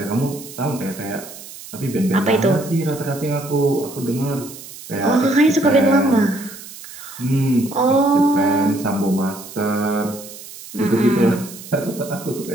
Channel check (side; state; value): right; noise; hiss, 15 dB below the sound